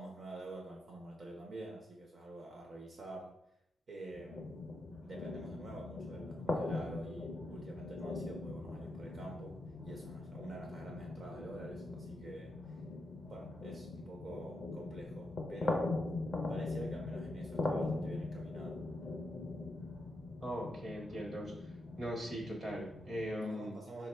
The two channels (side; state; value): both; normal; correlation 0.84